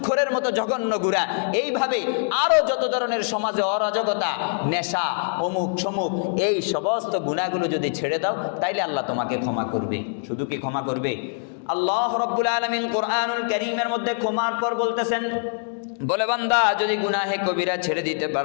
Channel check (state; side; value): silent; right; digital silence